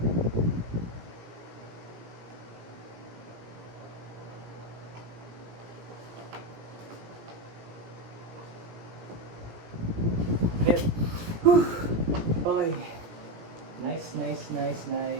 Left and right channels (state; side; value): late; left; 18 ms